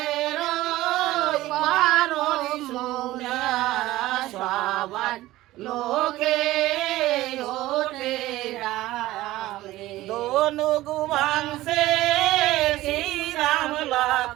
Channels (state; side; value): quieter; left; 16.8 dB